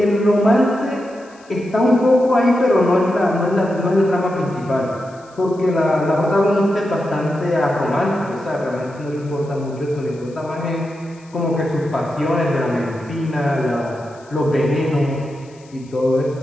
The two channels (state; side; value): noise; left; hiss, 28 dB below the sound